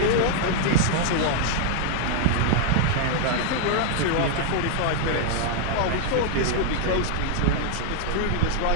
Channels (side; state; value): both; different; correlation 0.00